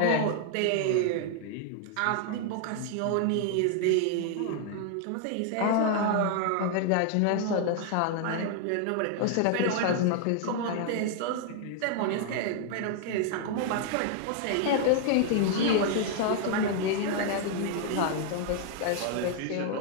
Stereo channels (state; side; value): different; both; correlation 0.00